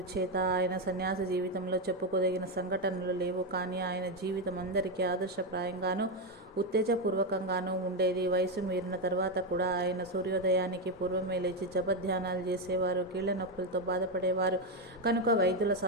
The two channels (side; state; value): both; normal; correlation 0.07